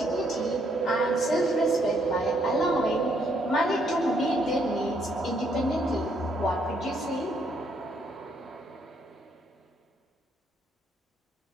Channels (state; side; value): normal; both; correlation 0.71